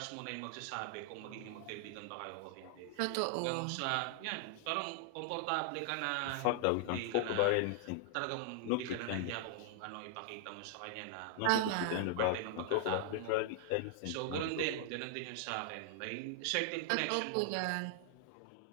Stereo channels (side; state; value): both; different; correlation -0.01